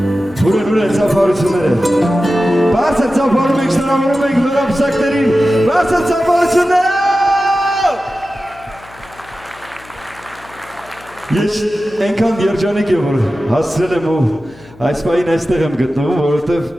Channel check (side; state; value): left; noise; hum, 23 dB below the sound